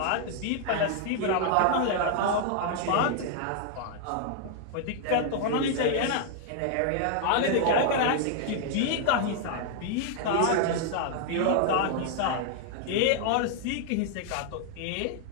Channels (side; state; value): both; different; correlation 0.00